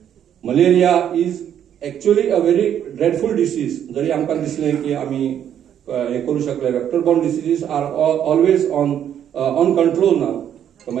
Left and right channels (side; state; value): left; quieter; 9.7 dB